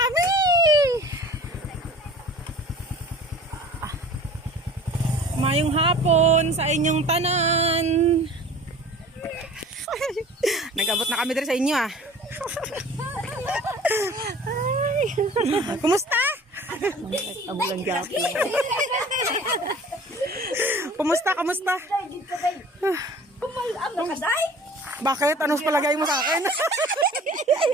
Mayong hapon sa inyong tanan. Nag-abot na kami dito sa inyo ah. Ay. Kumusta? Amulang gapi. Kumusta? Kumusta? Bakit? Anong palagay mo sa akin?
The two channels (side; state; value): both; normal; correlation 0.45